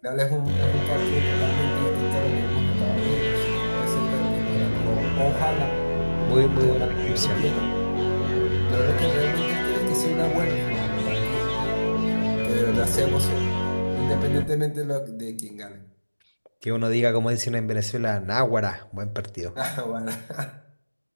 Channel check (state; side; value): inverted; both; correlation -1.00